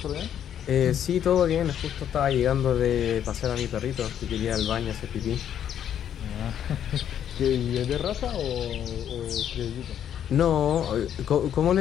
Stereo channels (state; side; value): quieter; right; 9.7 dB